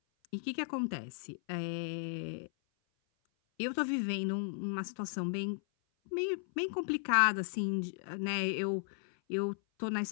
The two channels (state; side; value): silent; right; 54 dB below the other